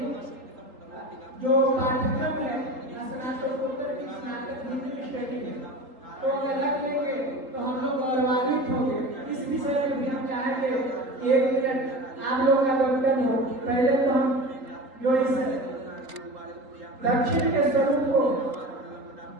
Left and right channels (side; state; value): left; late; 3.8 ms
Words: जो पाठ्यक्रम है स्नातकोत्तर की स्नातक डिग्री स्टडी में तो अगर रख लेंगे तो हम लोग गौरवान्वित होंगे। इस विषय में भी हम चाहेंगे 1 मिनट आप लोग का वक्तव्य हो। पहले तो हम जो इस दक्षिण के स्वरूप को